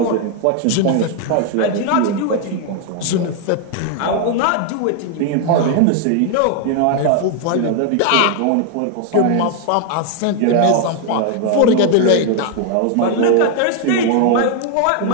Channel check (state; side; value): different; both; correlation 0.00